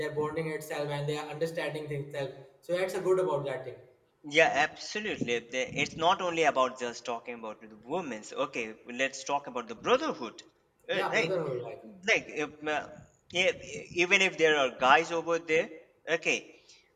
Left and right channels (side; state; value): both; identical; correlation 1.00